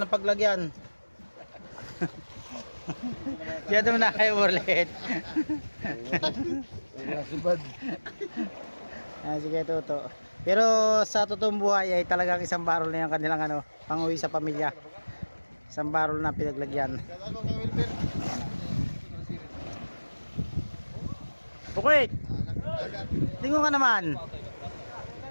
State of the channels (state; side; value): inverted; both; correlation -1.00